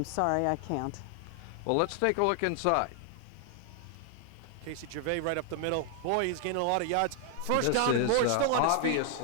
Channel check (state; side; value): different; both; correlation 0.00